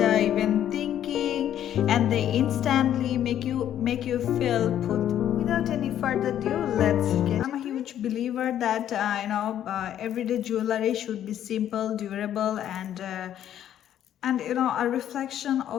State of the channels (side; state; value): right; quieter; 10.8 dB